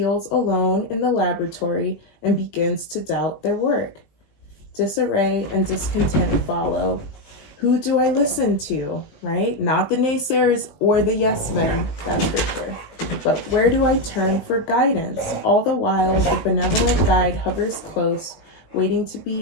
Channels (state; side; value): late; right; 19 ms